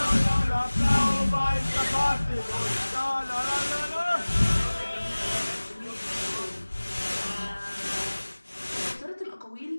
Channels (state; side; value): inverted; both; correlation -1.00